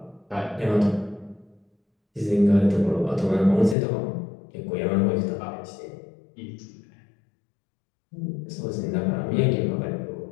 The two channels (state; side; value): drops out; right; at 3.8 s